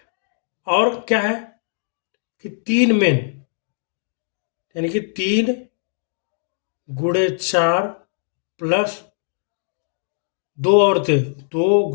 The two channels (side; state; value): right; silent; digital silence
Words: और क्या है कि 3 मेन, यानी कि 3 गुणे 4 प्लस 2 औरतें, 2